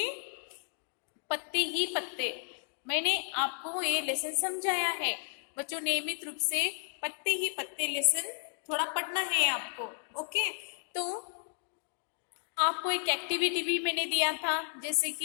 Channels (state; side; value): silent; right; 56 dB below the other